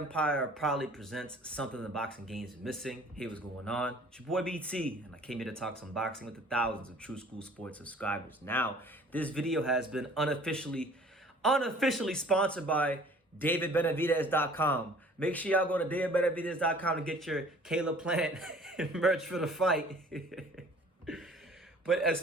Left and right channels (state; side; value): normal; both; correlation 0.51